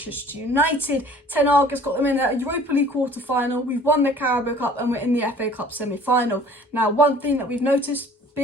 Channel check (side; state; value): both; normal; correlation 0.50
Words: United. Ten Hag has got them in the Europa League quarter-final. We've won the Carabao Cup and we're in the FA Cup semi-final. Now, one thing that we've noticed